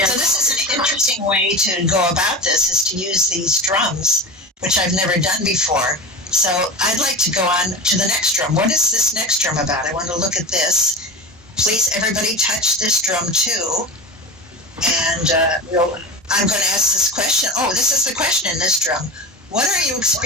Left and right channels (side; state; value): both; normal; correlation 0.27